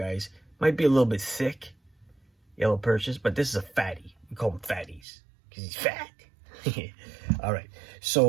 Might be a little bit thick, yellow perches, but this is a fatty. We call them fatties because he's fat. All right.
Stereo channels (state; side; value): drops out; left; at 5.0 s